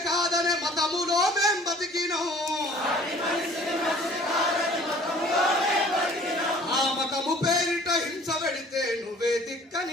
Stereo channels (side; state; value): both; normal; correlation 0.51